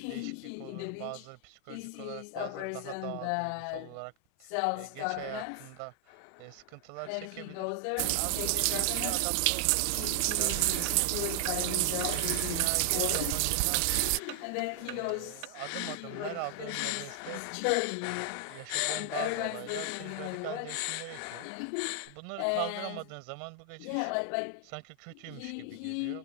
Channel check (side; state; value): both; different; correlation 0.00